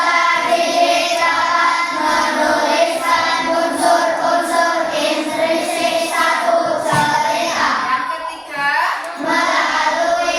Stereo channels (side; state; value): both; identical; correlation 1.00